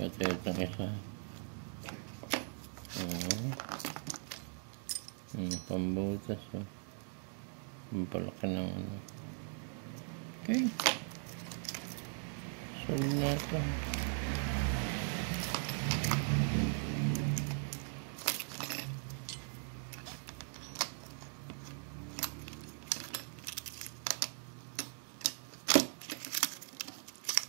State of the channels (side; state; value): left; silent; 51 dB below the other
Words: itong isa. Pambutas oh. Pampalaki ng ano. Okay. Solid na ito.